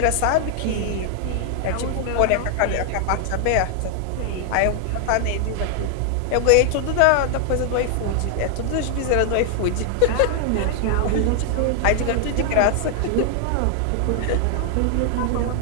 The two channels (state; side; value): different; both; correlation 0.00